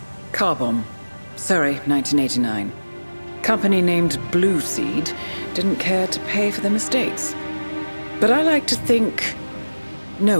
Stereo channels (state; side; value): inverted; both; correlation -1.00